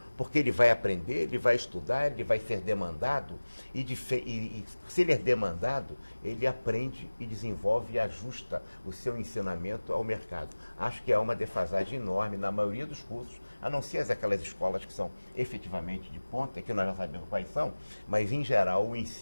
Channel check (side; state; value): both; inverted; correlation -1.00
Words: porque ele vai aprender, ele vai estudar, ele vai ser demandado, e se ele é demandado, ele aprende e desenvolve e ajusta o seu ensinamento ao mercado. Acho que há uma defasagem enorme na maioria dos cursos, a não ser aquelas escolas que são efetivamente de ponta, que nós já sabemos quais são, mas em geral o